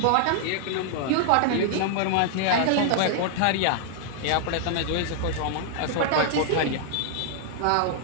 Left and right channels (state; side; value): different; both; correlation 0.00